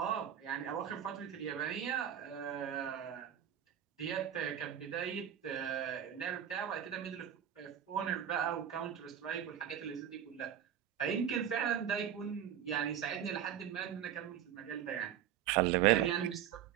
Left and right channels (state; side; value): quieter; left; 10.0 dB